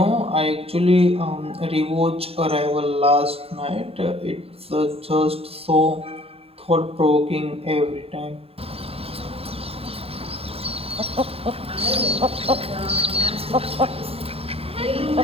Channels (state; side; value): late; left; 0.28 ms